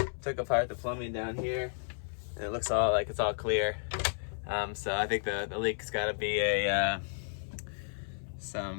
Took apart the plumbing down here and it looks all like it's all clear. So I think the leak's got to be a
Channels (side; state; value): right; silent; 56 dB below the other